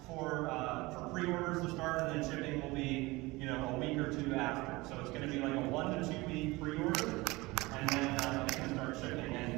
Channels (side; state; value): left; quieter; 22.1 dB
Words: for pre-orders to start, and then shipping will be, a week or two after. So it's going to be like a 1 to 2 week pre-order, and then it's going to start shipping.